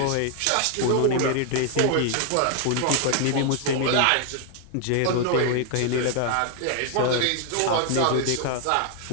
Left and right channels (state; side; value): different; both; correlation 0.00